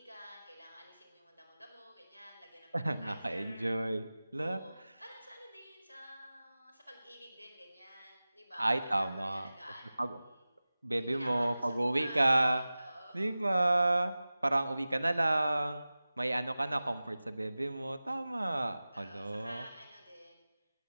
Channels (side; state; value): both; inverted; correlation -0.97